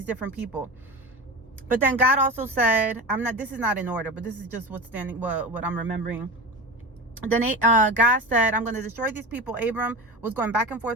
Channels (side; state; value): both; normal; correlation 0.27